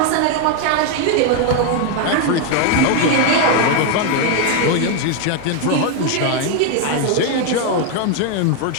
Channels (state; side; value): different; both; correlation 0.01